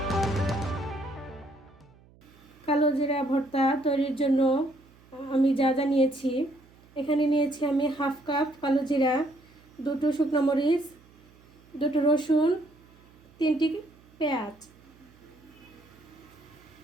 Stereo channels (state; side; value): noise; right; hum, 27 dB below the sound